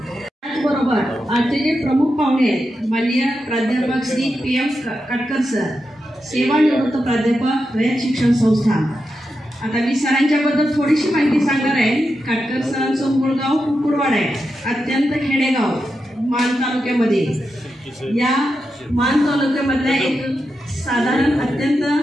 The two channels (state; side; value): normal; both; correlation 0.88